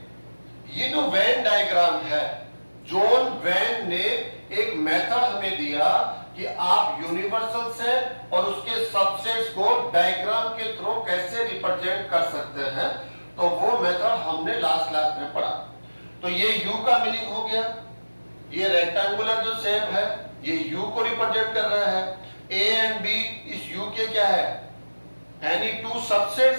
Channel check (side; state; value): both; inverted; correlation -1.00